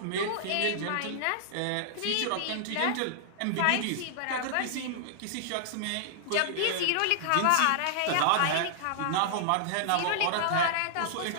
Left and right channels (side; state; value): both; different; correlation -0.01